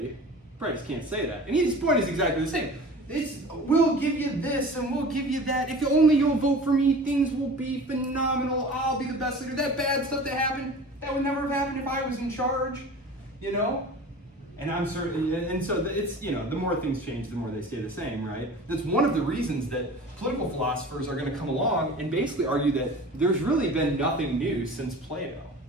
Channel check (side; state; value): both; normal; correlation 0.39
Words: Probably just can't say that. And his point is exactly the same. We'll give you this and we'll give you that. If only you'll vote for me, things will be phenomenal. I'll be the best leader. That bad stuff that happened, that would never have happened if I was in charge, you know? And I'm certain, and so it's, you know, the more things change, the more they stay the same, right? That's one of the reasons that political philosophers are going to come along and basically argue that there's really been nothing new since Plato.